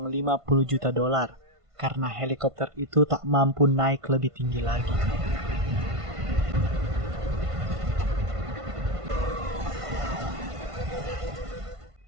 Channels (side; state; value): left; late; 1.5 ms